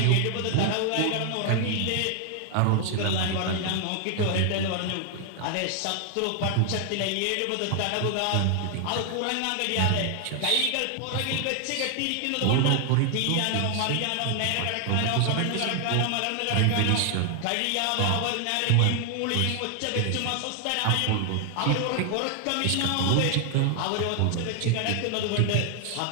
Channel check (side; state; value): both; different; correlation 0.00